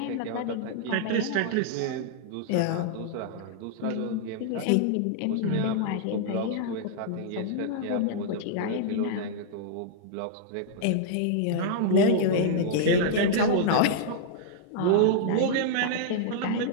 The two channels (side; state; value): both; different; correlation -0.01